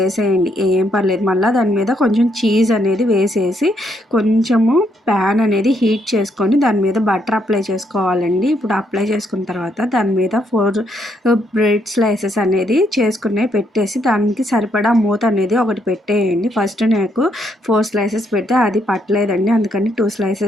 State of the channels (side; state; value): both; normal; correlation 0.74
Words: ఏం పర్లేదు. మళ్ళీ దాని మీద కొంచెం చీజ్ అనేది వేసేసి కొంచెము ప్యాన్ అనేది హీట్ చేసుకొని దాని మీద బటర్ అప్లై చేసుకోవాలండి. ఇప్పుడు అప్లై చేసుకున్న తర్వాత దాని మీద 4 బ్రెడ్ స్లైసెస్ అనేది చేసుకునే పెట్టేసి దానికి సరిపడా మూత అనేది ఒకటి పెట్టేయండి. ఫస్ట్ నాకు 4 స్లైసెస్ పెడితే అది పట్టలేదండి. అందుకని 2